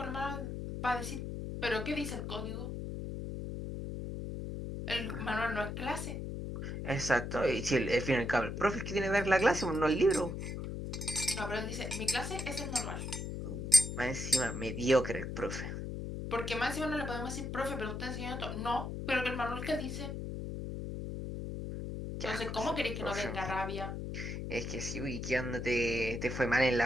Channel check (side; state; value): left; noise; hum, 5 dB below the sound